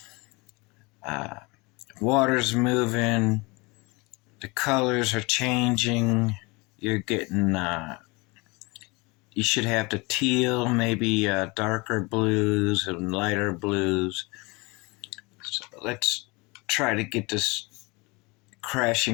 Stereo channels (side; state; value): right; quieter; 26.1 dB